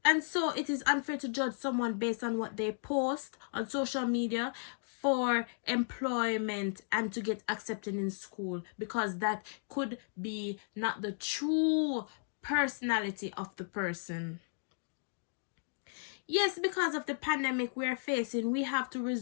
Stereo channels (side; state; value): right; silent; digital silence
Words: And so it is unfair to judge someone based on what they post on social media for employment and to get accepted in school, because that could be not the true personality of the person. Yes, because of the pandemic we are facing, we have to